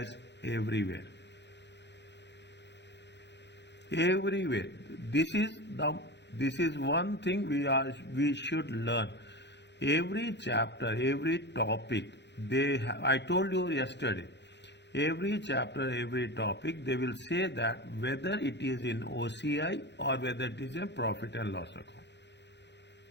everywhere. Everywhere. This is one thing we should learn. Every chapter, every topic, I told you yesterday, every chapter, every topic, they will say that whether it is in OCI or whether it is a profit and loss account.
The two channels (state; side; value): late; right; 0.51 ms